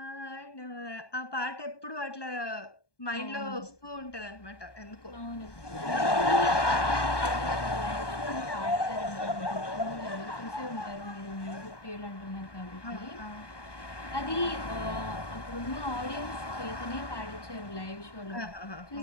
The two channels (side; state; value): right; late; 1.2 ms